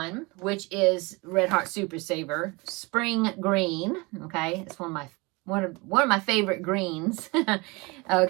which is Red Heart Super Saver, Spring Green. Okay, it's one of my favorite greens.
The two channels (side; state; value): left; quieter; 26.0 dB